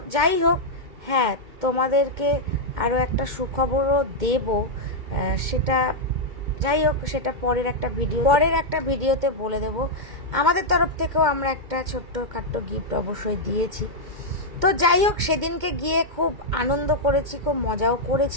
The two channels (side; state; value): left; late; 2.1 ms